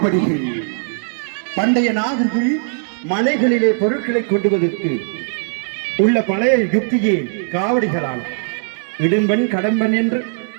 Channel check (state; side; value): silent; left; digital silence